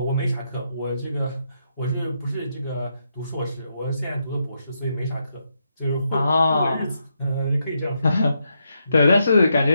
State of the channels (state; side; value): inverted; both; correlation -0.81